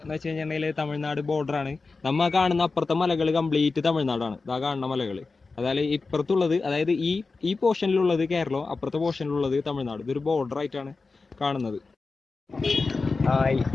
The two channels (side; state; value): right; quieter; 4.0 dB